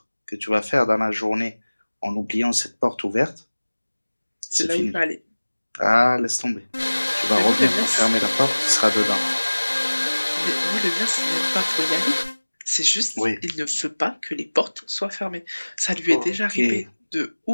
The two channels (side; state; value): both; inverted; correlation -1.00